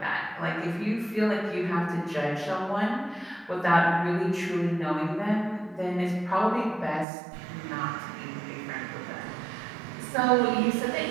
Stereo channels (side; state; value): left; drops out; at 7.1 s